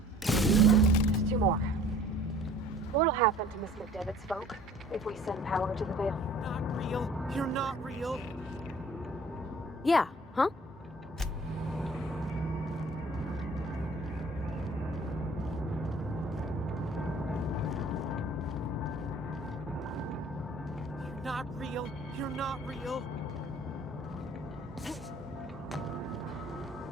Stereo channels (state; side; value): normal; both; correlation 0.50